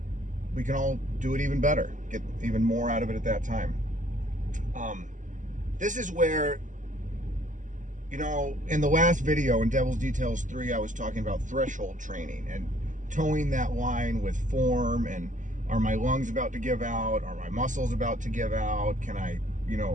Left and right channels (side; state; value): left; late; 0.37 ms